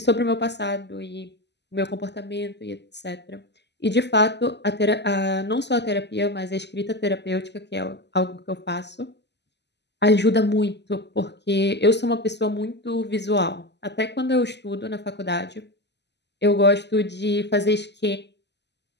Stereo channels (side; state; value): right; late; 0.50 ms